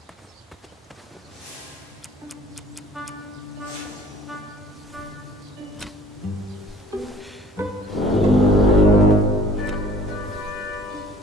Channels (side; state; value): both; normal; correlation 0.50